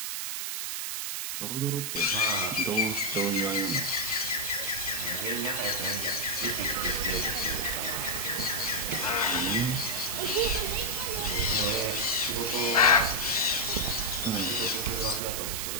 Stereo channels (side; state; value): right; noise; hiss, 2 dB below the sound